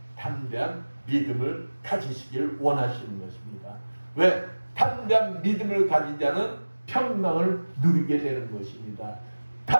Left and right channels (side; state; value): both; inverted; correlation -1.00